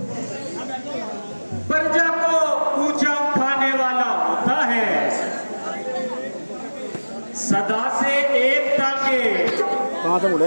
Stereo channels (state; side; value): inverted; both; correlation -1.00